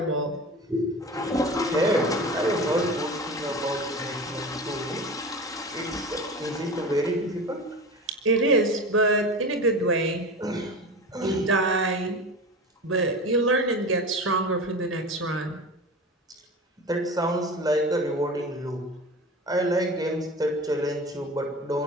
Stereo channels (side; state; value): both; normal; correlation 0.31